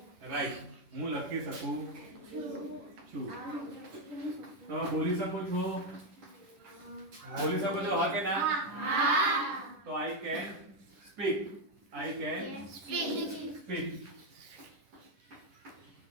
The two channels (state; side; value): late; left; 10 ms